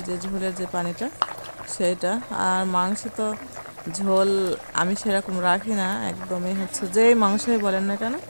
যে ঝোলের যে পানিটা সেটা। আর মাংস তো ঝোল আমি সেরকম রাখি না, একদমই যেই মাংসই বলেন না কেন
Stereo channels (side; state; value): both; inverted; correlation -1.00